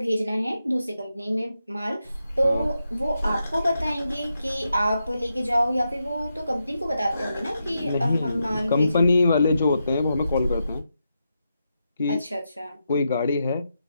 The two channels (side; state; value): both; inverted; correlation -0.85